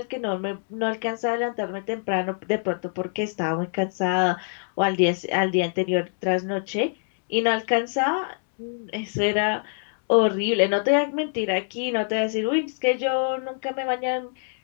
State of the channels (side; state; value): right; silent; 62 dB below the other